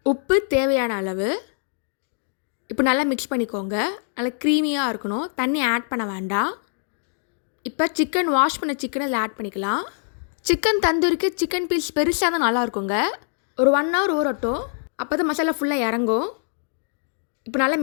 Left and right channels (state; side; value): silent; right; digital silence